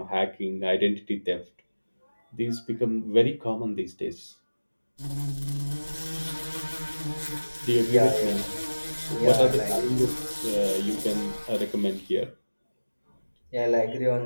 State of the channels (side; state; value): both; inverted; correlation -1.00